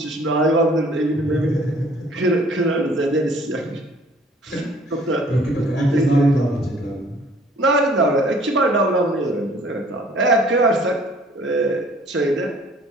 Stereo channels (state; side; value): normal; both; correlation 0.55